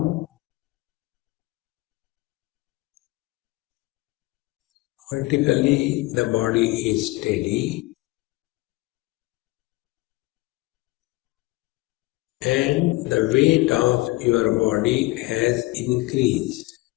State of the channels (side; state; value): right; quieter; 21.0 dB